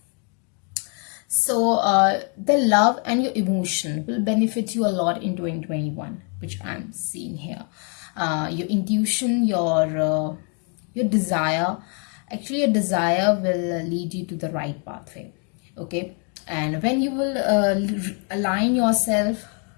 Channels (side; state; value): right; quieter; 39.1 dB